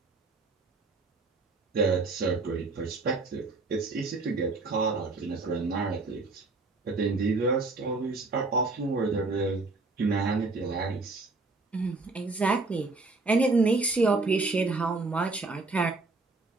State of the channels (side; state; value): left; quieter; 3.6 dB